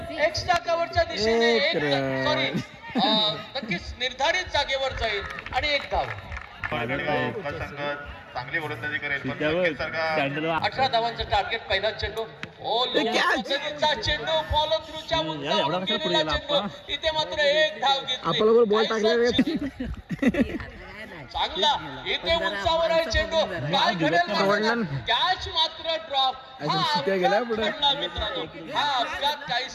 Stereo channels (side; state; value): both; identical; correlation 1.00